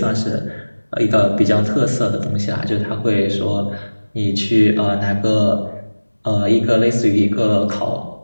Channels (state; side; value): inverted; both; correlation -1.00